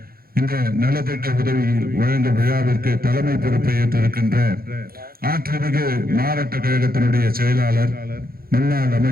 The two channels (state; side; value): late; left; 0.43 ms